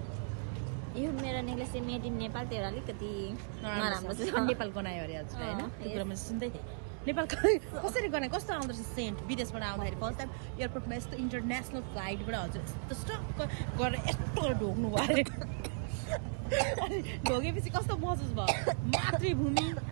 यो मेरो नेक्लेस चाहिँ मेड इन नेपाल तेरो अलिकति नराम्रो छ नेपाल गनायो अरे हजुर होइन त्यो कुरा मैले सुन्दै थिएँ नेपाल कसरी गनायो कस्तो आउँदो रहेछ सेन्ट विदेशबाट आउँदाखेरि फर्स्ट टाइम एयरपोर्टमा यस्तो इन्टरनेसनल फ्लाइटबाट हजुर यस्तो स्टक्क गरेर यस्तो ढोक्नु भयो अरे अनि ढोकेपछि कस्तो महसुस भयो मातृभूमि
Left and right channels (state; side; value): silent; left; digital silence